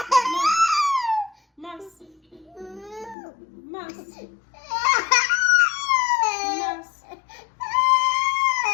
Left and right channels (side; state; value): right; drops out; at 3.2 s